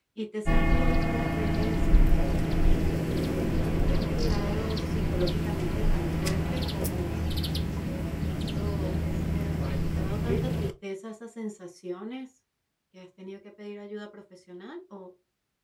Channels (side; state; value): both; identical; correlation 1.00